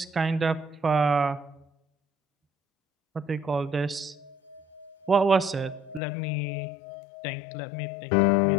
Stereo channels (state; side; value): drops out; right; at 6.0 s